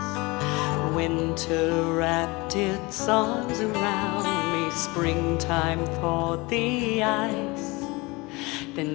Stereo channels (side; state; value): right; quieter; 24.4 dB